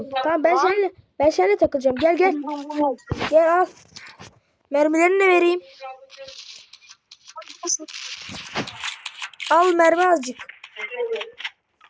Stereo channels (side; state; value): both; identical; correlation 1.00